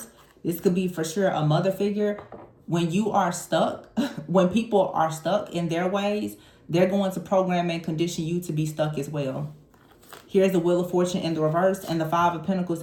This could be for sure a mother figure. When you are stuck, when people are stuck in their ways, they're going to program and condition you to be stuck as well. Here's the Wheel of Fortune in the reverse and the Five of Pentacles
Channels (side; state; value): both; identical; correlation 1.00